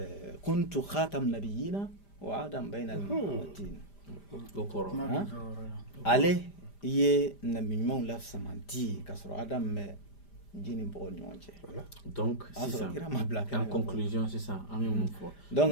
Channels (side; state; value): right; late; 5.0 ms